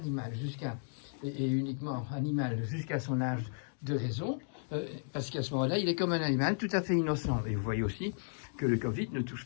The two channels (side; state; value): right; silent; digital silence